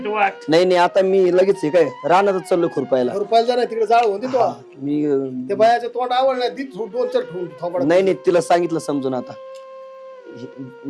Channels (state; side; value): identical; both; correlation 1.00